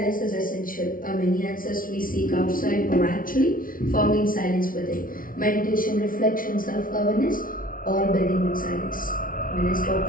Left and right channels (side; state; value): right; late; 0.40 ms